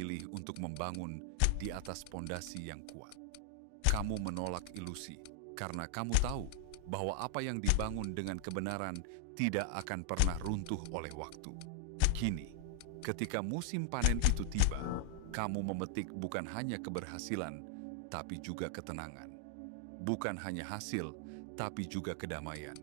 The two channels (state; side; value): different; both; correlation 0.00